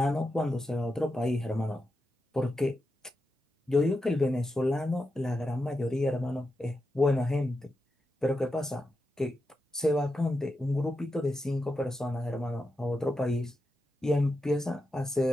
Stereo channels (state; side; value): normal; both; correlation 0.88